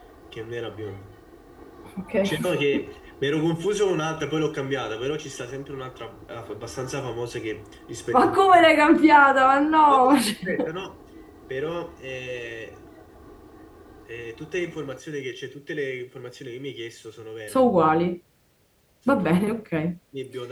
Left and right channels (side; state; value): both; identical; correlation 1.00